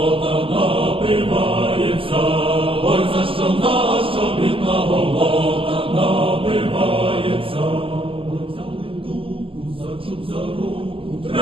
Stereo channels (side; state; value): left; late; 0.26 ms